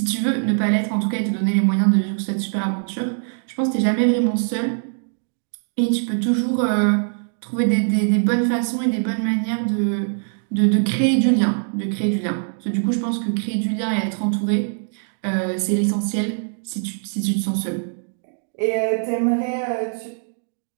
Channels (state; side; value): silent; left; digital silence